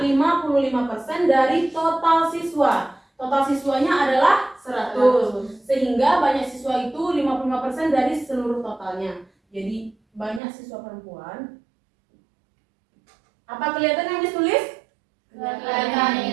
55% dari total siswa. Total siswanya adalah 100. Sehingga banyak siswa itu 55% dari seluruh totalnya. Jadi, banyak siswa perempuan. Apa kelihatan yang ditulis? Kelihatan.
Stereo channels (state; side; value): drops out; left; at 10.4 s